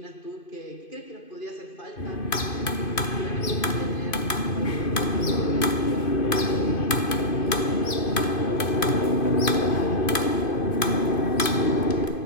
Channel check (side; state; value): right; late; 2.5 ms